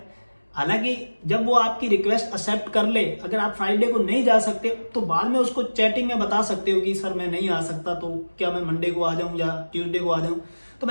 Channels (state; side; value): inverted; both; correlation -1.00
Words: हालांकि जब वो आपकी रिक्वेस्ट एक्सेप्ट कर ले, अगर आप फ्राइडे को नहीं जा सकते तो बाद में उसको चैटिंग में बता सकते हो कि सर मैं नहीं आ सकता, तो क्या मैं मंडे को आ जाऊं या ट्यूसडे को आ जाऊं। तो